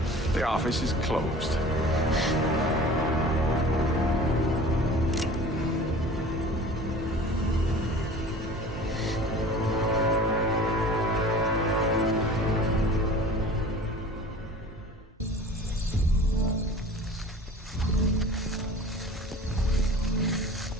The office is closed.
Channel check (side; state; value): both; normal; correlation 0.43